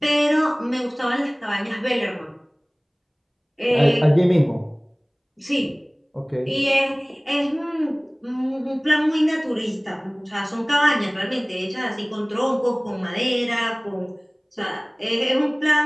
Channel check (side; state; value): both; identical; correlation 1.00